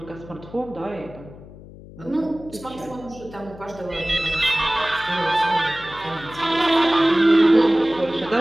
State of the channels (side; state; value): left; noise; hum, 18 dB below the sound